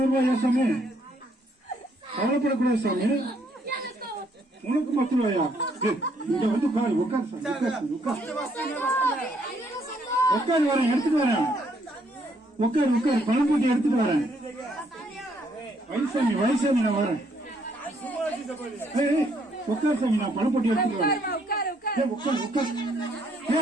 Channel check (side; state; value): both; normal; correlation 0.70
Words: ரூபாயா சாமி? கவலைப்படக்கூடாது சாமி, உனக்கு 10 ரூபாயா? இங்க வந்து உட்காரு சாமி, உட்காரு வரேன், எடுத்துட்டு வரேன். உட்காரு, பணம் போட்டி எடுத்துட்டு வரேன். வயசாமி நான் வரேன். உட்காரு சாமி, நான் பணம் போட்டி எடுத்துட்டு வரேன். உட்காரு.